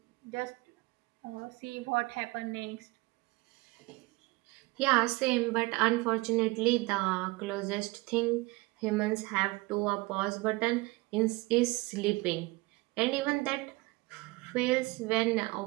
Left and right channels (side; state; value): left; quieter; 23.2 dB